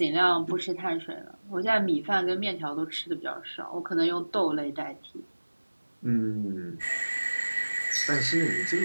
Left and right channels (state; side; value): inverted; both; correlation -1.00